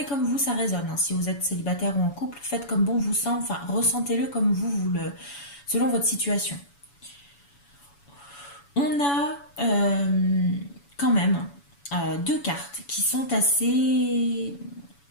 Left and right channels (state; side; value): late; right; 7.0 ms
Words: comme vous, ça résonne. Hein. Si vous êtes célibataire ou en couple, faites comme bon vous semble, enfin ressentez-le comme selon votre situation. On a quand même deux cartes qui sont assez